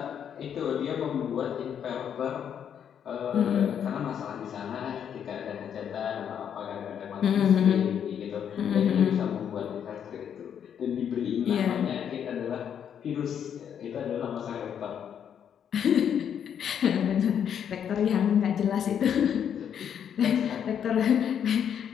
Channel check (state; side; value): quieter; right; 8.6 dB